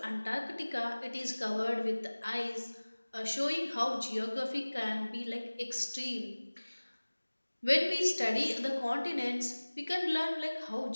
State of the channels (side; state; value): both; inverted; correlation -1.00